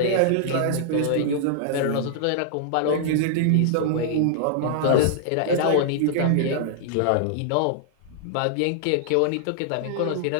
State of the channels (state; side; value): different; both; correlation -0.01